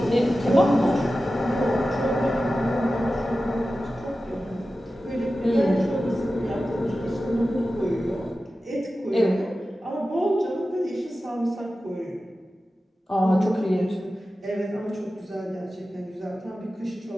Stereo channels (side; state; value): both; normal; correlation 0.94